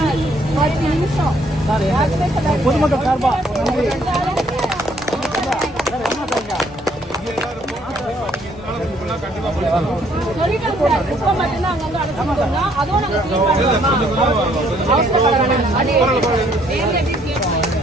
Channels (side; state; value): both; normal; correlation 0.65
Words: 10 நிமிஷம். பொதுமக்கள் சார்பா சொல்லிட்டோம் சார், குப்பை மட்டும்தான் அங்க வந்து அடைச்சிருக்கோம்னா அதுவும் நாங்க அது